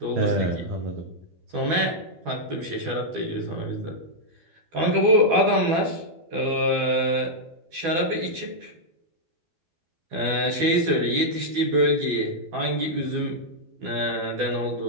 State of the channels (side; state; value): left; late; 12 ms